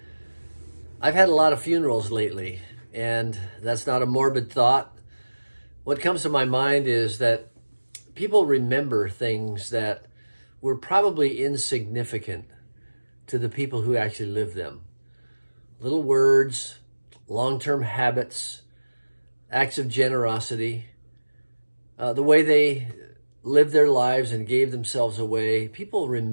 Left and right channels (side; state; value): both; inverted; correlation -1.00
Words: I've had a lot of funerals lately, and that's not a morbid thought. What comes to my mind is that people remember things that were probably insignificant to the people who actually lived them. Little words, long-term habits, acts of generosity, the way they lived their lives and gave themselves away. People